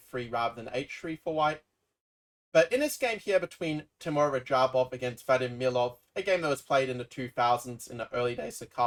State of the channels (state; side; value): identical; both; correlation 1.00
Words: rather than h3 for white. But in this game here between Teimour Radjabov against Vadim Milov, a game that was played in the 2000s in the early days of